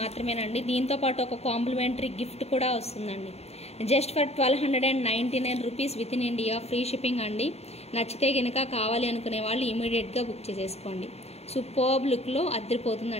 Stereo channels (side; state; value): right; late; 0.30 ms